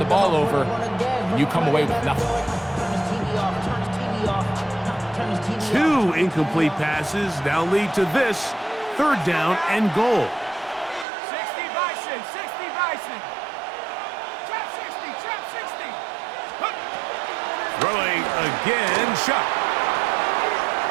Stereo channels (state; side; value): drops out; left; at 11.1 s